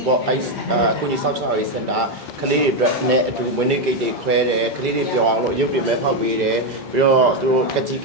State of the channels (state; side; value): normal; both; correlation 0.06